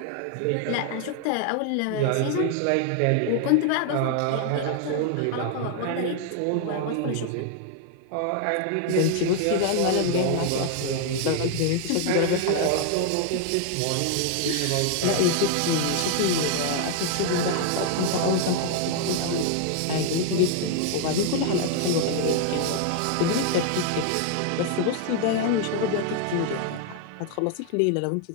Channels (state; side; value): different; both; correlation 0.00